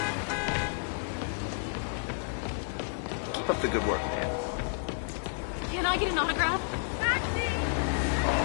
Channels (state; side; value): silent; right; 57 dB below the other